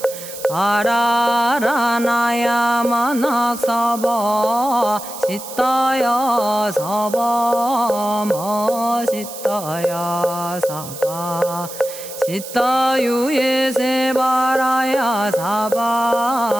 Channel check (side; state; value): right; noise; hiss, 12 dB below the sound